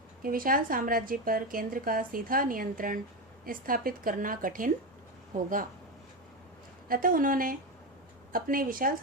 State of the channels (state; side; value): normal; both; correlation 0.15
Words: कि विशाल साम्राज्य पर केंद्र का सीधा नियंत्रण स्थापित करना कठिन होगा, अतः उन्होंने अपने विशाल